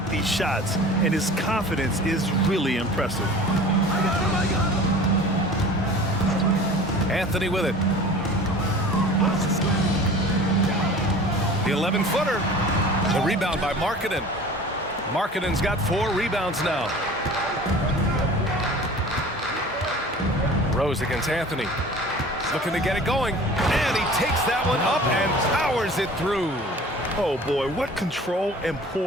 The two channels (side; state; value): both; normal; correlation 0.43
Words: these shots, and his confidence is really impressive. Anthony with it. The 11-footer. The rebound by Markkanen. Markkanen's got 4 rebounds now. Rose against Anthony. Looking to get it going. And he takes that one up and powers it through. Oh boy, what control and